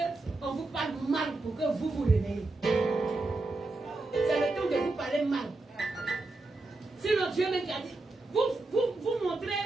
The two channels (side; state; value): left; quieter; 3.1 dB